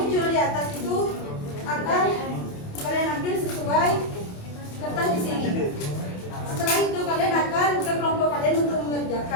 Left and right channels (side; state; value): right; late; 28 ms